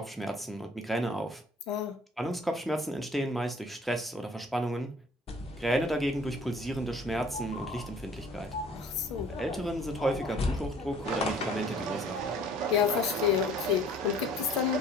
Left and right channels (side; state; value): both; normal; correlation 0.53